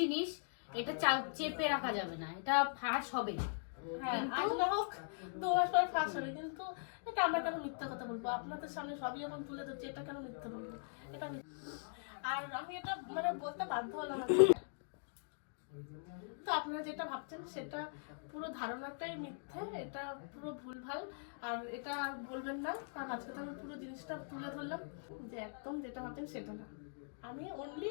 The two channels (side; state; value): right; silent; digital silence